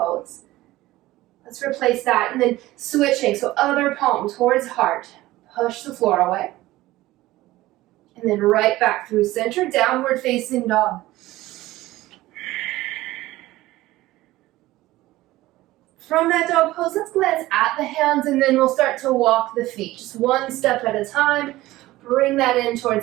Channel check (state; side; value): quieter; left; 17.3 dB